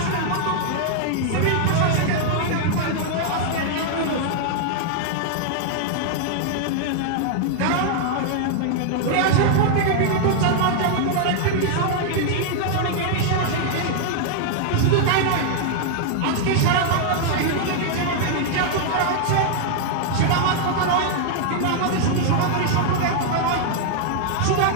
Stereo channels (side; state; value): both; different; correlation 0.00